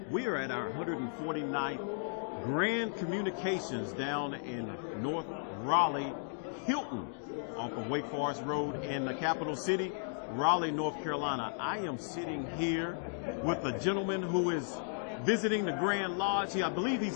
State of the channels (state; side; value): silent; right; digital silence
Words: We are at our 149th Grand Communications down in North Raleigh, Hilton, off of Wake Forest Road in the capital city, Raleigh, North Carolina. I am sitting here with a gentleman who is visiting the Grand Lodge. I believe he's